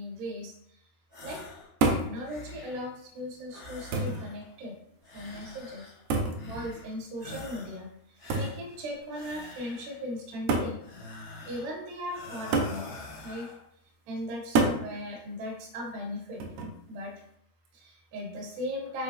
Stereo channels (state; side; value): late; left; 13 ms